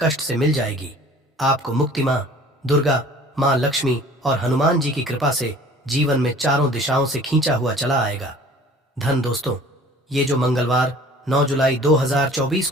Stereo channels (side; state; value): both; normal; correlation 0.49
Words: कष्ट से मिल जाएगी। आपको मुक्ति माँ दुर्गा, माँ लक्ष्मी और हनुमान जी की कृपा से जीवन में चारों दिशाओं से खींचा हुआ चला आएगा। धन दोस्तों, ये जो मंगलवार 9 जुलाई 2024